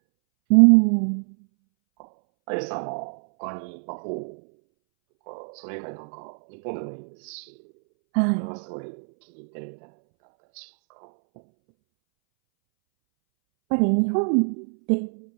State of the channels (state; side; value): silent; left; 63 dB below the other